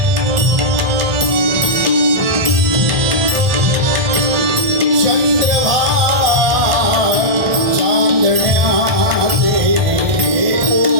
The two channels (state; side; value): late; left; 1.4 ms